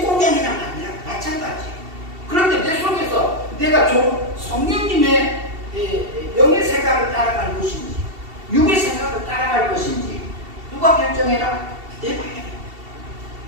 공양이랑 마찬가지. 그런데 내 속에서 내가 성령님의 영의 생각을 따라갈 것인지 육의 생각을 따라갈 것인지 누가 결정해라? 내가 해라.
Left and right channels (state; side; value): late; left; 2.7 ms